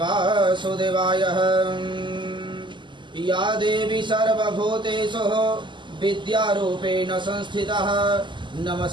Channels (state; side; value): late; left; 0.23 ms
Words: या देवी सर्वभूतेषु विद्यारूपेण संस्थितः